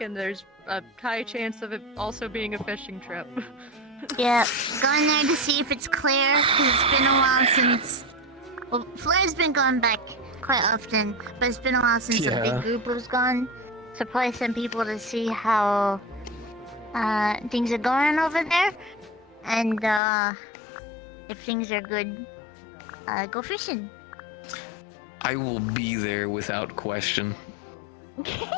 and there's a high chance of it also being a fishing trip. Yeah, going there to see if it's clear, because it's been a while since... Well, Flair's been going back quite often, but it's been a while since a big group was gone. So probably send people to see how things are going over there, and if things are good, go fishing. I will be there without question.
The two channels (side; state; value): right; drops out; at 20.0 s